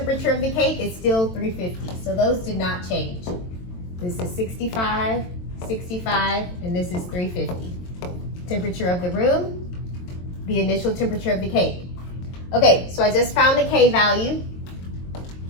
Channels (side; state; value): right; late; 22 ms